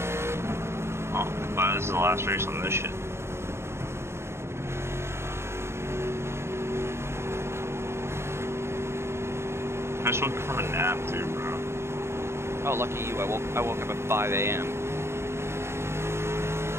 Oh, but this is the last race on this shit. I just woke up from a nap too, bro. Oh, lucky you! I woke up at 5 a.m.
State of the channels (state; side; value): late; left; 0.12 ms